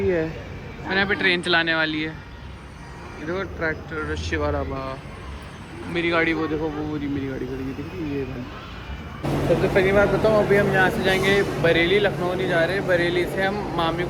है, मैंने यहाँ पे ट्रेन चलाने वाली है। ये देखो ट्रैक्टर, शिवा ढाबा। मेरी गाड़ी वो देखो, वो मेरी गाड़ी खड़ी है, दिख रही है ये गाड़ी। सबसे पहली बात बताऊँ, अभी हम यहाँ से जाएंगे बरेली, लखनऊ नहीं जा रहे। बरेली से हम मामी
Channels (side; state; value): both; identical; correlation 1.00